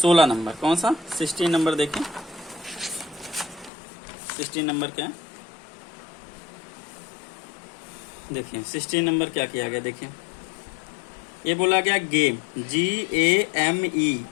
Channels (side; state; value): right; drops out; at 3.7 s